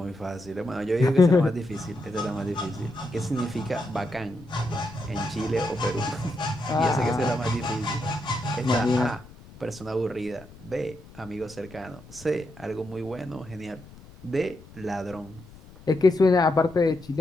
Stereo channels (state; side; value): noise; left; rumble, 20 dB below the sound